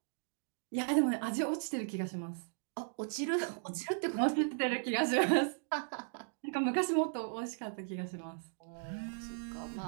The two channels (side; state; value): left; silent; digital silence